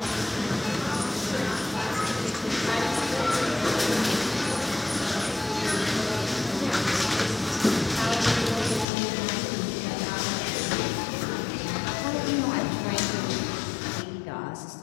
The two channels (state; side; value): drops out; right; at 8.8 s